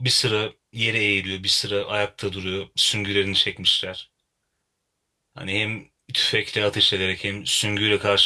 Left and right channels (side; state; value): both; identical; correlation 1.00